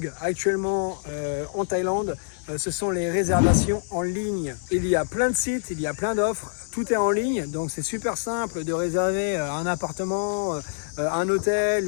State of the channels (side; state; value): right; silent; digital silence